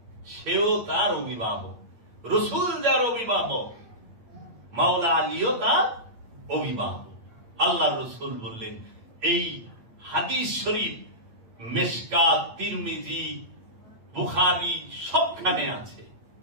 সেও তার অভিভাবক। রাসূল যার অভিভাবক, মাওলা আলীও তার অভিভাবক। আল্লাহ রাসূল বললেন, এই হাদিস শরীফ মিশকাত, তিরমিজি, বুখারী সবখানে আছে,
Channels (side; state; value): left; late; 8.7 ms